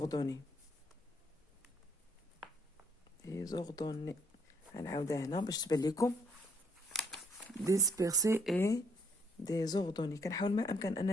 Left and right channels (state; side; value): normal; both; correlation 0.68